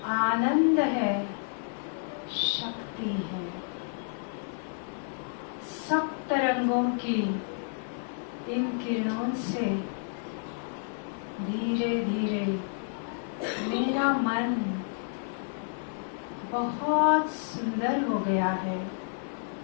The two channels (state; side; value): silent; right; 58 dB below the other